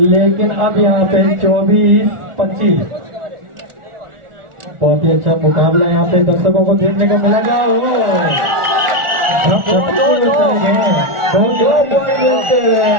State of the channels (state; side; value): late; left; 1.4 ms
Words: अब यहाँ पे 24-25 बहुत ही अच्छा मुकाबला यहाँ पे दर्शकों को देखने को मिलेगा।